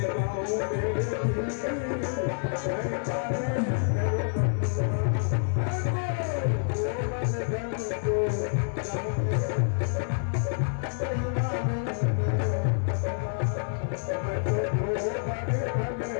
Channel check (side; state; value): right; silent; 59 dB below the other